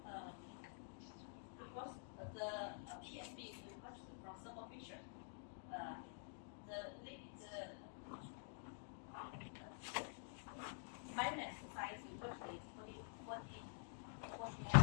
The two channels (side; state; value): right; silent; digital silence